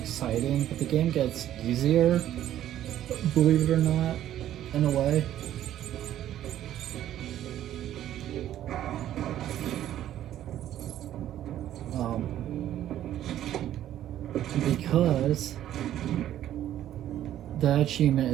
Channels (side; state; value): left; quieter; 12.0 dB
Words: but the game gets easier, believe it or not, in a way. Because that achievement